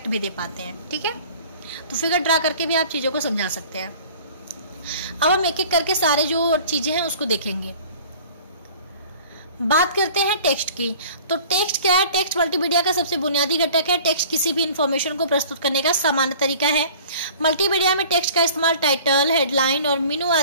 भी दे पाते हैं। ठीक है, तो फिगर ड्रा करके भी आप चीज़ों को समझा सकते हैं। अब हम एक एक करके सारे जो चीज़ें हैं उसको देखेंगे। बात करते हैं टेक्स्ट की। तो टेक्स्ट क्या है? टेक्स्ट मल्टीमीडिया का सबसे बुनियादी घटक है। टेक्स्ट किसी भी इंफॉर्मेशन को प्रस्तुत करने का सामान्य तरीका है। मल्टीमीडिया में टेक्स्ट का इस्तेमाल टाइटल, हेडलाइन और मेनू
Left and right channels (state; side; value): inverted; both; correlation -0.47